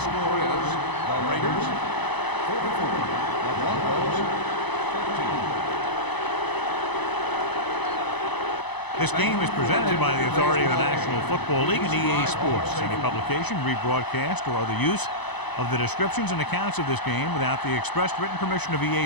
score is the Raiders 44, the Broncos 13. This game is presented by the authority of the National Football League and EA Sports. Any publication, rebroadcast, or other use of the descriptions and accounts of this game without the express written permission of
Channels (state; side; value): late; right; 0.99 ms